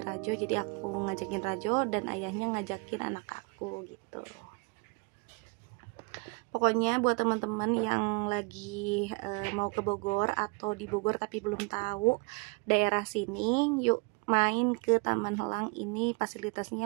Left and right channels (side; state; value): left; quieter; 31.2 dB